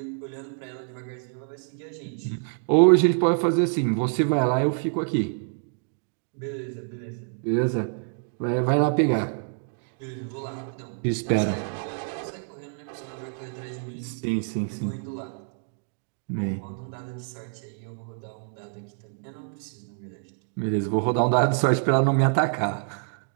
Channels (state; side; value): silent; left; 60 dB below the other